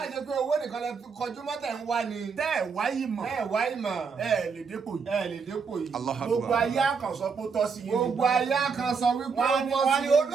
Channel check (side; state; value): left; quieter; 5.5 dB